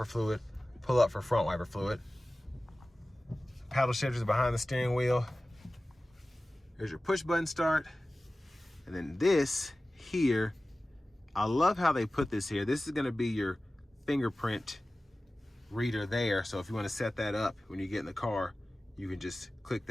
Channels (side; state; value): both; normal; correlation 0.97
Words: fluid, pull up for front wiper fluid. Paddle shifters behind the steering wheel. Here's your push button start. And then this here, I love how they put this here. This is gonna be your fingerprint reader there. So if you wanna set that up when you get in the car, you can just click